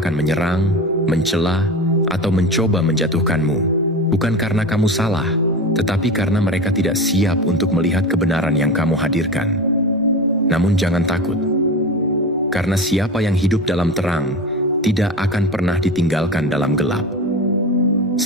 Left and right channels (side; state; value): both; normal; correlation 0.28